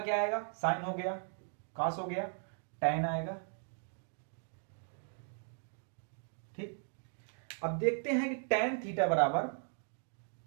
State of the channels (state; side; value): silent; left; 53 dB below the other